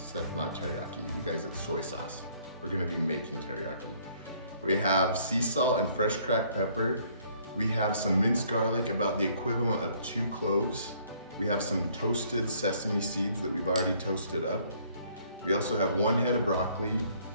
That's not teriyaki, you guys, it's soy sauce. We're gonna be making teriyaki. We have sea salt and fresh cracked pepper. We have some minced garlic, about the equivalent of 2 cloves. We have some toasted sesame seeds that we've already toasted up. We also have 1 head of broccoli,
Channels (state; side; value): inverted; both; correlation -0.62